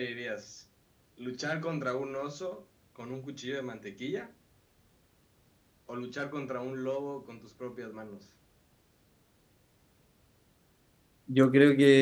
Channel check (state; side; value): identical; both; correlation 1.00